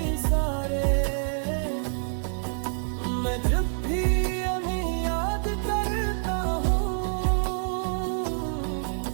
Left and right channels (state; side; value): silent; left; digital silence